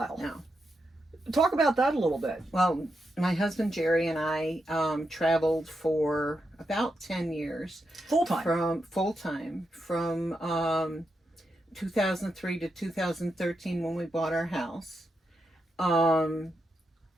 No. Talk about that a little bit. Well, my husband Jerry and I traveled for about 10 years. Full-time? From 2003 to 2013 when we bought our house.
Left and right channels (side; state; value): both; normal; correlation 0.85